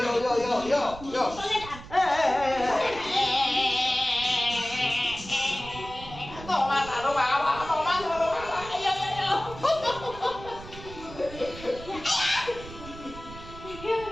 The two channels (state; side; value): noise; right; rumble, 14 dB below the sound